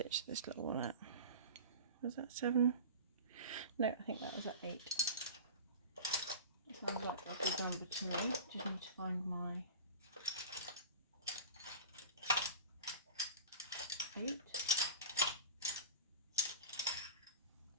this little one at? Was that 7? No, I think that was at 8. That sounds like a good number to me. Just need to find my 8.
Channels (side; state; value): both; inverted; correlation -0.32